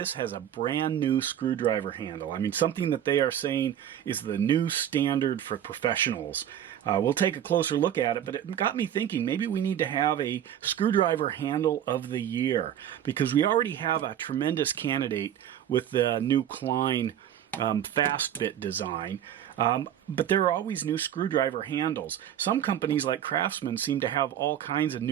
has a brand new screwdriver handle. I mean, something that they are saying is the new standard for professionals. We'll take a closer look at it, but it got me thinking maybe we need to have a screwdriver handle of the year, because we already have a tremendous candidate with the new Klein fast bit design. But there are always new screwdriver handles. Some companies like Craftsman seem to have all kinds of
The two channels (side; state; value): left; quieter; 10.3 dB